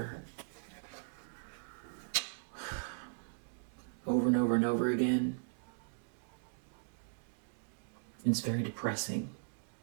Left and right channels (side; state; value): left; silent; digital silence